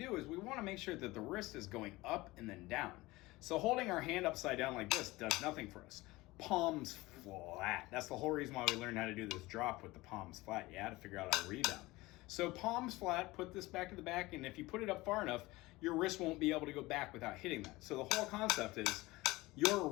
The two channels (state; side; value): quieter; right; 20.4 dB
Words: is we want to make sure that the wrist is going up and then down. So holding our hand upside down like this does nothing for us. Palms flat. That's the whole reason why we learned how to do this drop with the palms flat. You had to figure out how to rebound. So palms flat, put this back to the back, and if you put it up far enough, your wrist won't be able to go back without hitting that. So the whole concept is